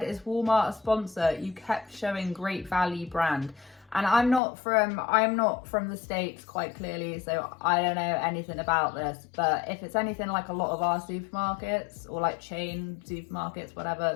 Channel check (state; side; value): drops out; right; at 4.4 s